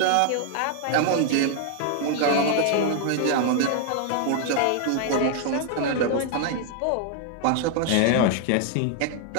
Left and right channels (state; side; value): different; both; correlation 0.00